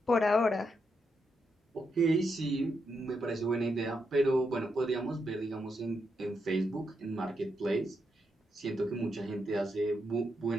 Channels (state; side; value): normal; both; correlation 0.82